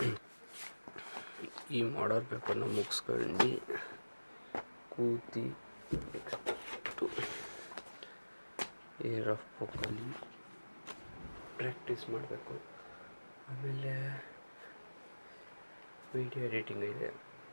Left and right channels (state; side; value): inverted; both; correlation -1.00